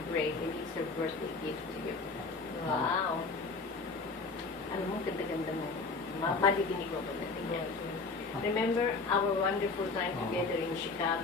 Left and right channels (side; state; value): right; quieter; 4.1 dB